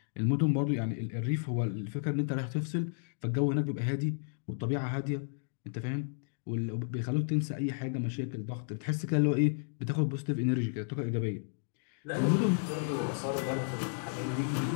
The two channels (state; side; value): silent; right; digital silence